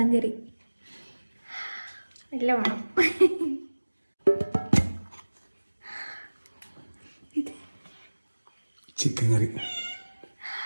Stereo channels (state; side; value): inverted; both; correlation -1.00